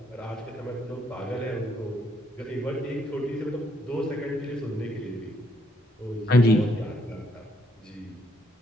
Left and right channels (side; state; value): both; normal; correlation 0.72